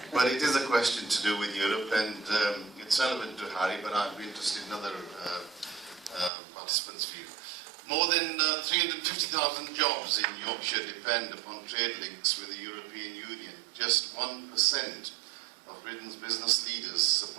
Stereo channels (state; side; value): drops out; left; at 6.3 s